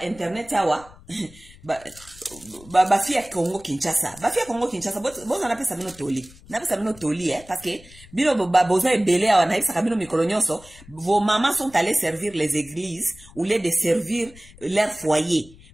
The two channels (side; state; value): left; noise; rumble, 22 dB below the sound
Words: internet awa. Bafia Congo Kinshasa. Bafia Congo Kinshasa, bozo na pesa bino toli. Na pesa bino toli, parce que bino bozo ebele awa na isa kabino mikolonyoso, vos mamans sont allées servir les églises au lieu de servir leur foyer.